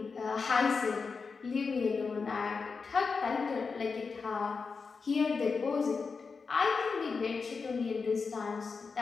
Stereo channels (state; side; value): quieter; right; 4.9 dB